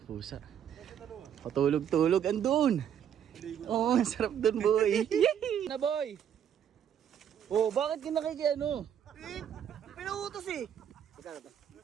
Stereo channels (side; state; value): left; quieter; 9.1 dB